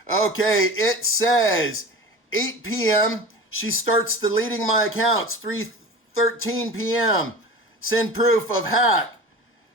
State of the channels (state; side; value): normal; both; correlation 0.35